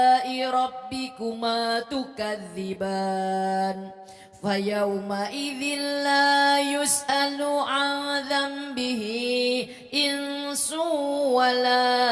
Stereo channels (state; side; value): identical; both; correlation 1.00